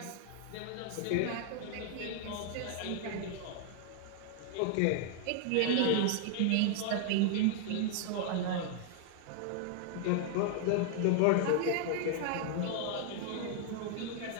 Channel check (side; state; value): both; different; correlation 0.00